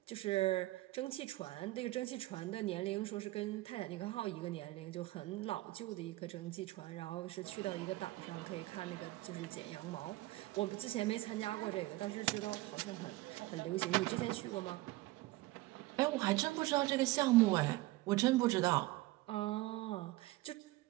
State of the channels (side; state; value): left; quieter; 18.9 dB